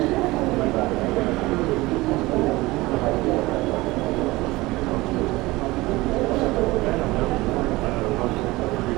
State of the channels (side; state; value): left; quieter; 20.5 dB